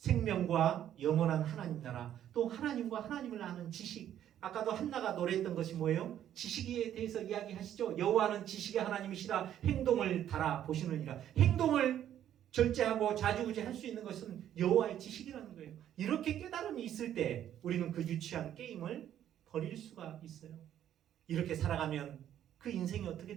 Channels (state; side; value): quieter; left; 10.9 dB